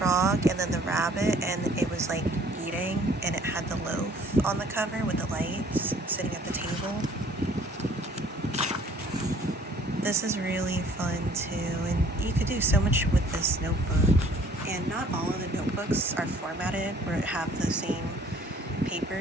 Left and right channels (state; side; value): normal; both; correlation 0.56